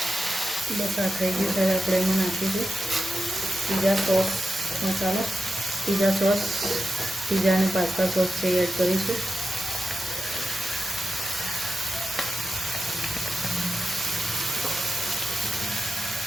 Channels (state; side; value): normal; both; correlation 0.91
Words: બસ આ થઈ ગયું છે. આપણે એમાં નાખીશું પીઝા સોસ મસાલો. પીઝા સોસ, પીઝા અને પાસ્તા સોસ છે એડ કરીશું.